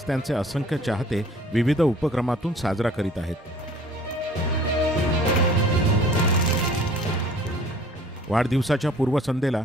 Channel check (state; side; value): normal; both; correlation 0.51